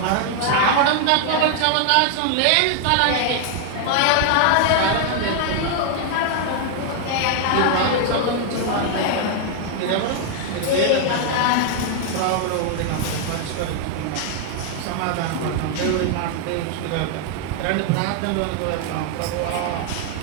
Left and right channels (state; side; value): different; both; correlation 0.00